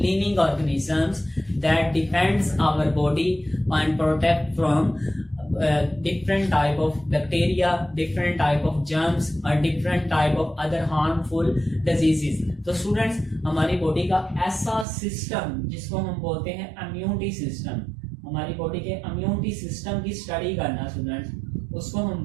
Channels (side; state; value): left; drops out; at 14.9 s